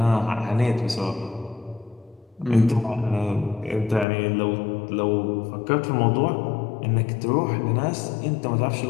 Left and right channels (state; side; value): drops out; right; at 4.0 s